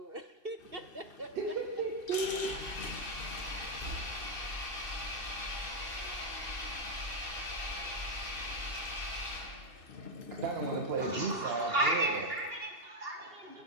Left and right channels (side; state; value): left; late; 2.8 ms